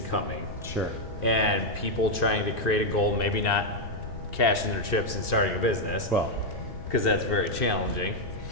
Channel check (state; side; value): late; right; 2.5 ms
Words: coming, Sure. and people trying to create a goal, maybe not cashing their chips and starting a business, Well, because that's very challenging.